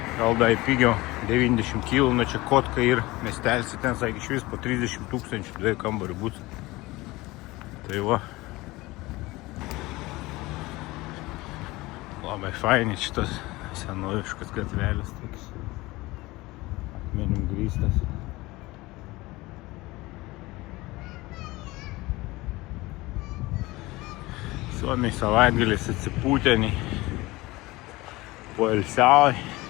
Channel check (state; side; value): quieter; right; 20.6 dB